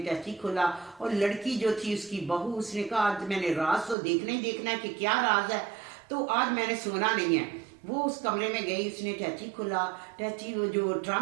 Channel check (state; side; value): drops out; left; at 4.0 s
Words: खोला और लड़की जो थी उसकी बहू, उसने कहा आज मैंने राज तो देखना ही देखना है कि क्या राज है, तो आज मैंने सोना नहीं है। वो उस कमरे में गई, उसने टैची खोला, टैची वो जो